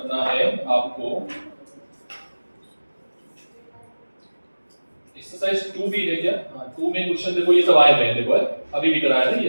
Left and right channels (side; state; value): both; inverted; correlation -1.00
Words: है आपको। एक्सरसाइज 2 भी है क्या? हाँ 2 में क्वेश्चन देखो ये सब आए हुए हैं, देखो है अभी भी कराया ना